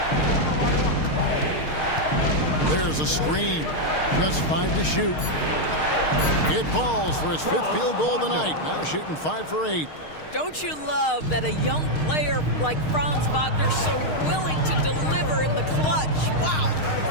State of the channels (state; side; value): late; right; 6.5 ms